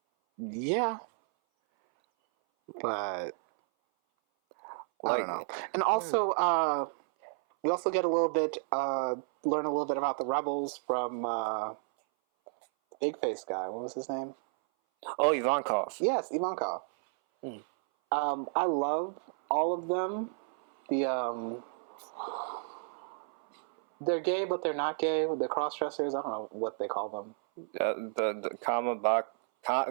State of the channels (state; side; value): silent; left; 57 dB below the other